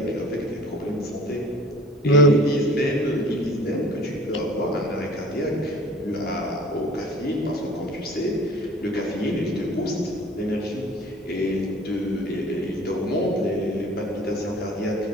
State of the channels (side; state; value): both; normal; correlation 0.47